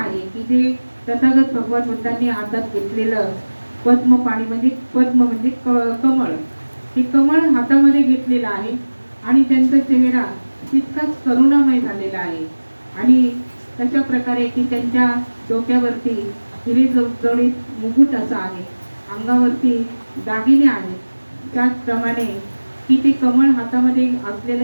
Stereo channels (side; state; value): both; inverted; correlation -1.00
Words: की जे तथागत भगवान बुद्धांनी हातात घेतलेलं पद्मपाणी म्हणजे पद्म म्हणजे कमळ, हे कमळ हातामध्ये घेतलेलं आहे आणि त्यांचा चेहरा तितकाच करुणामय झालेला आहे आणि तशा प्रकारे की त्यांच्या डोक्यावरती हिरे जडजडीत मुकुट असा आहे, अंगावरती दागिने आहेत, त्याचप्रमाणे की ते कमळ हातामध्ये